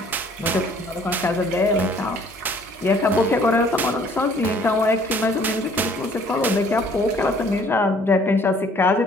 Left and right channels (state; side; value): normal; both; correlation 0.58